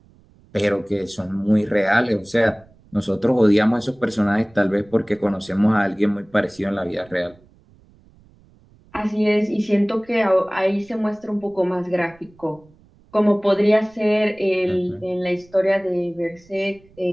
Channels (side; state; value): right; noise; rumble, 29 dB below the sound